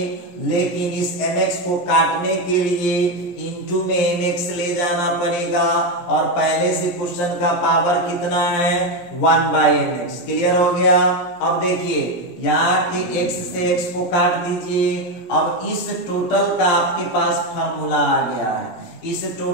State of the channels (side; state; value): right; late; 17 ms